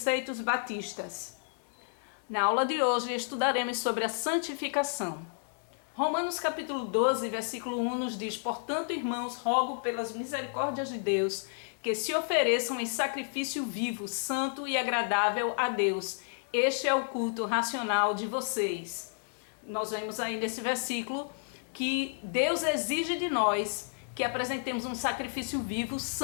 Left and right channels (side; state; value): right; silent; digital silence